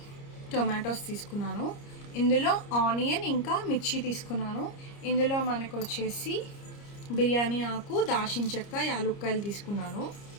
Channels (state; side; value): late; right; 30 ms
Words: టొమాటోస్ తీసుకున్నాను. ఇందులో ఆనియన్ ఇంకా మిర్చి తీసుకున్నాను. ఇందులో మనకు వచ్చేసి బిర్యానీ ఆకు, దాల్చిన చెక్క, యాలుక్కాయలు తీసుకున్నాను.